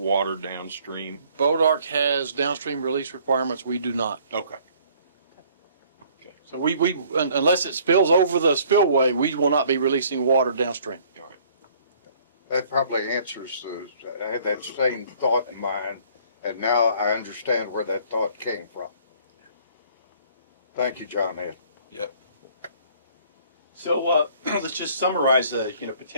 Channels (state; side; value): inverted; both; correlation -0.58